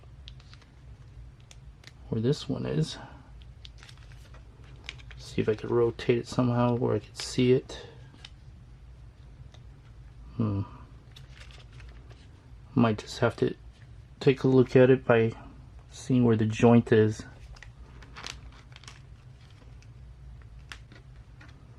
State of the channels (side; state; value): both; identical; correlation 1.00